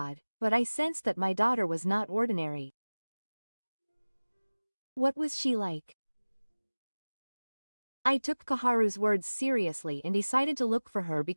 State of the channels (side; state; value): both; inverted; correlation -1.00